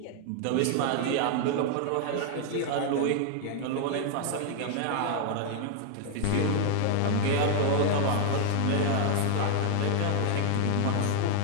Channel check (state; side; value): different; both; correlation 0.00